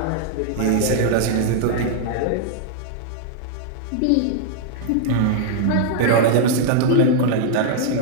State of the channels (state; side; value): different; both; correlation -0.01